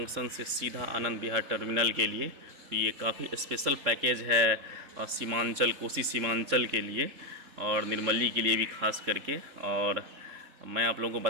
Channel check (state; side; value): late; left; 3.7 ms